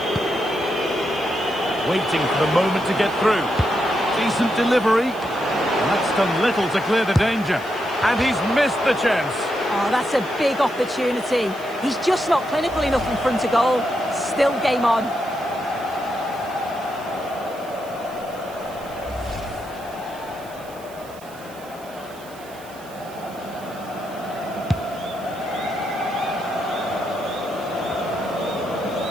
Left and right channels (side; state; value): right; noise; hiss, 21 dB below the sound